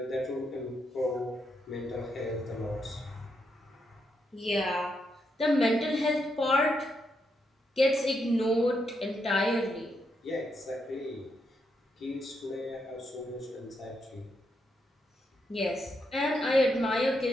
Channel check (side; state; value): both; normal; correlation 0.81